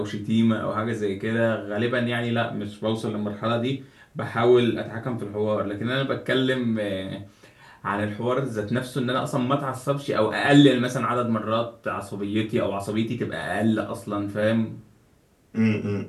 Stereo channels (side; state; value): both; identical; correlation 1.00